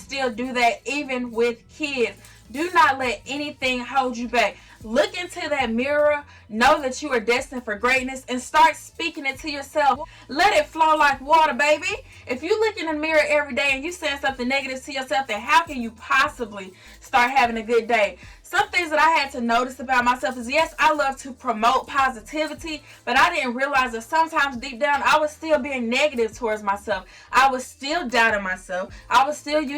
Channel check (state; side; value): identical; both; correlation 1.00